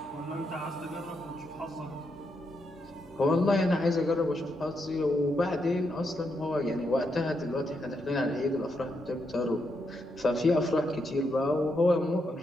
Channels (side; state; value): both; normal; correlation 0.81